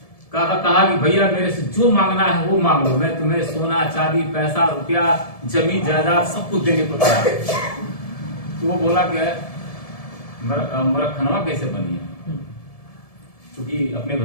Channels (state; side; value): late; right; 1.7 ms